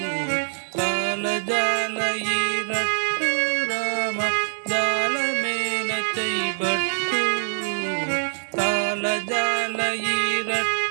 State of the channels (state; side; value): silent; left; digital silence